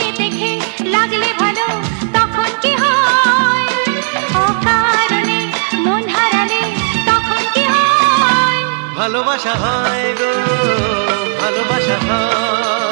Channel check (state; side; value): silent; left; digital silence